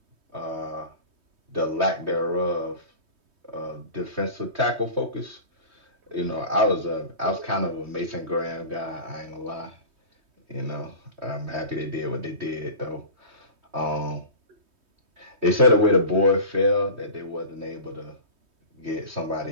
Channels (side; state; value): left; late; 3.2 ms